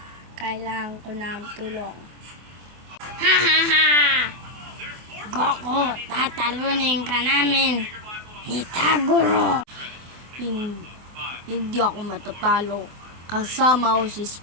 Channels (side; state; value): left; late; 24 ms